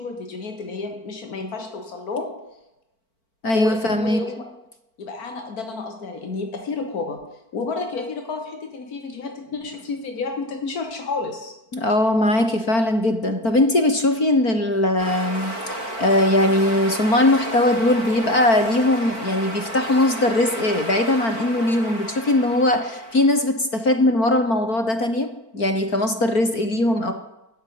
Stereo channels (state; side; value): late; right; 4.5 ms